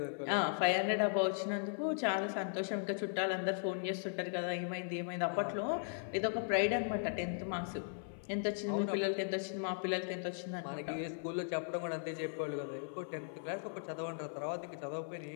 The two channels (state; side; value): silent; right; 53 dB below the other